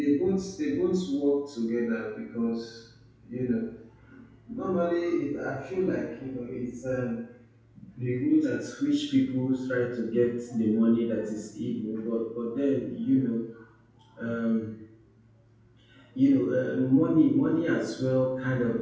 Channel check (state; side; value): identical; both; correlation 1.00